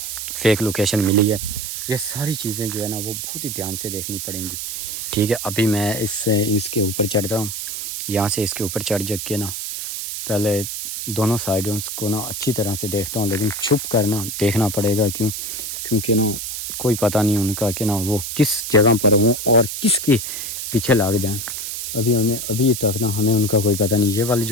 فیک لوکیشن ملی ہے، یہ ساری چیزیں جو ہے نا وہ بہت ہی دھیان سے دیکھنی پڑیں گی، ٹھیک ہے۔ ابھی میں اس کے اوپر چڑھتا ہوں، یہاں سے اس کے اوپر چڑھ جا کے نا پہلے دونوں سائڈوں کو نا اچھی طرح سے دیکھتا ہوں، لیکن چھپ کر نا دیکھنا پڑے گا، کیونکہ نا کوئی پتہ نہیں ان کا کہ نا وہ کس جگہ پر ہوں اور کس کے پیچھے لگ جائیں۔ ابھی تک نا ہمیں ان کا کوئی پتہ نہیں۔ یہ والی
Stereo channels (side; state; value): right; noise; hiss, 5 dB below the sound